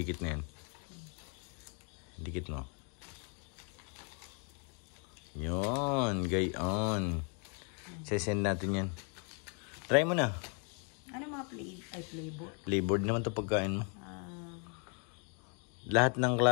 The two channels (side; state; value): right; quieter; 38.8 dB